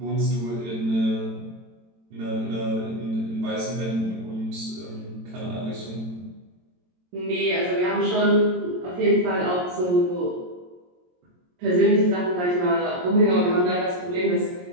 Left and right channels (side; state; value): left; late; 22 ms